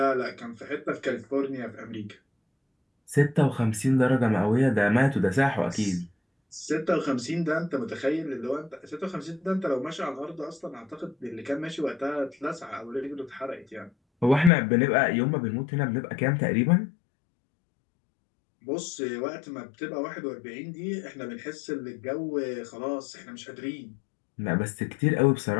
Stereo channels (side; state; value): right; drops out; at 14.5 s